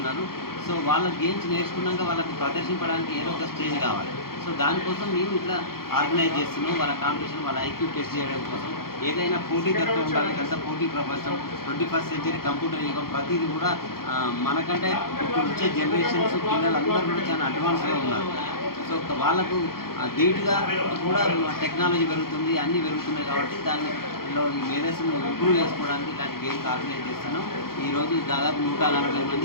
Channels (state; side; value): late; right; 0.93 ms